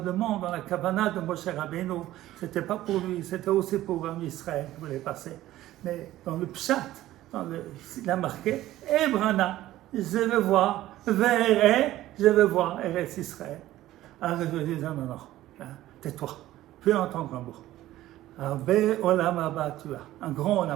dans la Kavana de Moshe Rabbeinu, ce n'était pas pour lui, c'était aussi pour Israël qui voulait passer. Mais dans le Pshat, il a marqué, Ebrana, je veux voir, Verre, je veux voir Eretz Israël. Alors je lui dis, non, tais-toi, plus entendre un mot. Arbe Olam Haba, tu as, un grand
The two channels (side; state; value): left; quieter; 14.9 dB